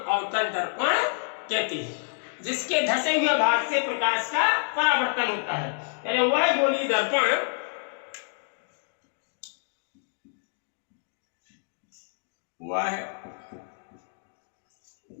अवतल दर्पण कहते हैं। जिसके धसे हुए भाग से प्रकाश का परावर्तन होता है, यानी वह गोली दर्पण वह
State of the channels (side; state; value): right; silent; digital silence